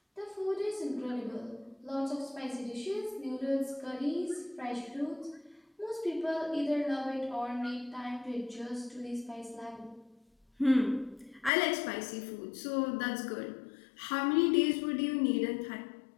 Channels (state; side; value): drops out; right; at 11.5 s